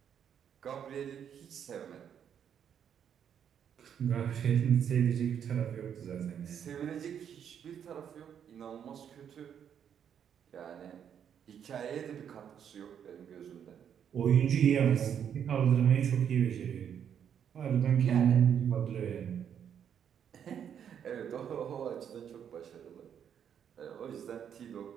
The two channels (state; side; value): quieter; left; 8.5 dB